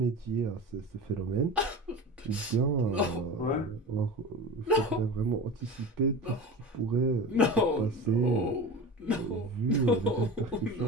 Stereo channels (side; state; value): both; normal; correlation 0.30